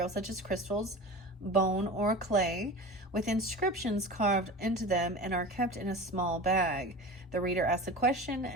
such as crystals, bone, or clay, with inscriptions carved into them and are kept in a small bag. The reader asks a question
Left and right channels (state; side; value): normal; both; correlation 0.33